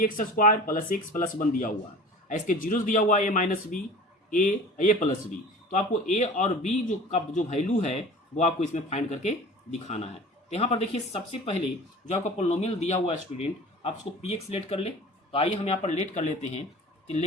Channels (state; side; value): normal; both; correlation 0.40